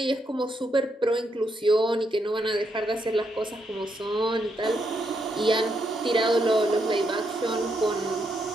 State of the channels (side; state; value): both; normal; correlation 0.79